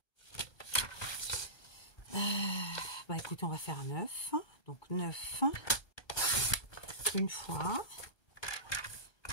bah écoutez, on va faire un 9. Donc, 9 une fois.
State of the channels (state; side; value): late; right; 1.2 ms